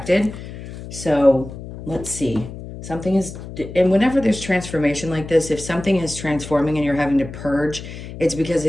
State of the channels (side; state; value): left; noise; hum, 12 dB below the sound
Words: So let's see. Something is, and whenever there's transformation like this, if something is transforming and you're having to purge, it's because